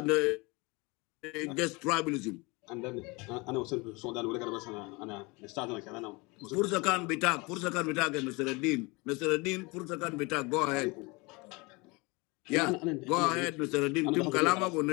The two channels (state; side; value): quieter; right; 26.4 dB